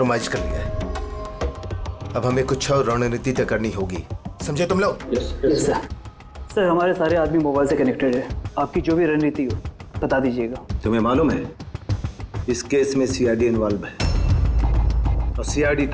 कर लिया है। अब हमें कुछ और रणनीति तय करनी होगी। समझे तुम लोग? Yes sir. सर हमारे सारे आदमी मोबाइल से कनेक्टेड है, आपकी जो भी रणनीति हो बता दीजिएगा। तुम्हें मालूम है इस केस में सीआईडी इन्वॉल्व है और सीआईडी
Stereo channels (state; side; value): identical; both; correlation 1.00